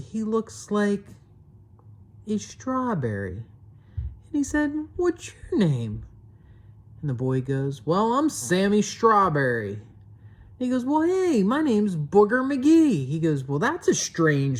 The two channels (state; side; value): identical; both; correlation 1.00